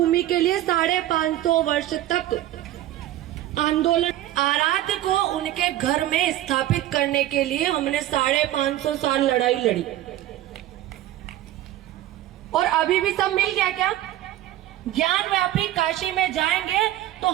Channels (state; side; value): quieter; left; 14.0 dB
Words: के लिए 550 वर्ष तक आंदोलन, आराध्य को उनके घर में स्थापित करने के लिए हमने 550 साल लड़ाई लड़ी और अभी भी सब मिल गया क्या? ज्ञान व्यापी काशी में जाएंगे तो